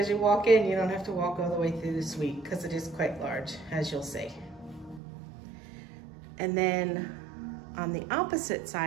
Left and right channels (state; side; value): drops out; left; at 5.0 s